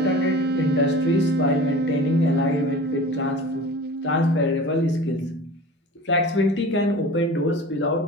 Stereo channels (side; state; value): both; normal; correlation 0.37